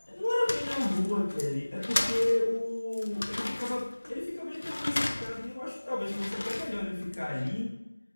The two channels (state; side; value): inverted; both; correlation -1.00